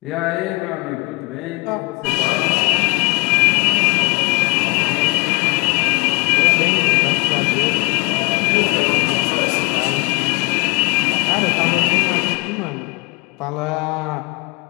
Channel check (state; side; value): quieter; right; 28.7 dB